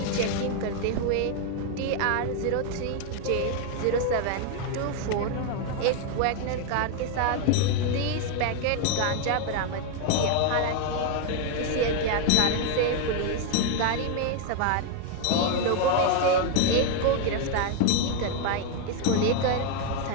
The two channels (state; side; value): different; both; correlation 0.01